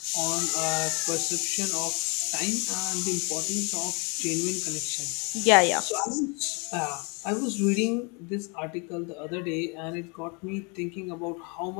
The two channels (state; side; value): quieter; right; 32.2 dB